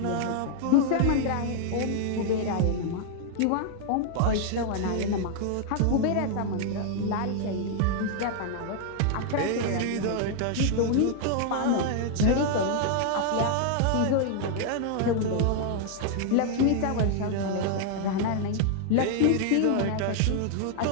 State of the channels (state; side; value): different; both; correlation 0.00